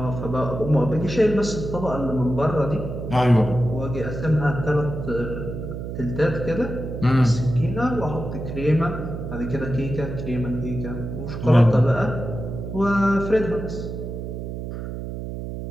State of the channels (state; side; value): noise; right; hum, 6 dB below the sound